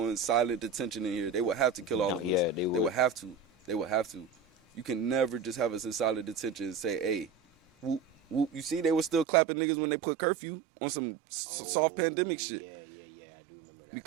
silent detention in here. They would have to kill all of us. Yeah, they would. They would have to. They would have to. You can never just have us in silent detention and say, hey, whoop. You see, they were still clapping niggas when they put curfew on some soft pandemic shit. Yeah, I do remember that.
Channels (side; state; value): left; drops out; at 9.2 s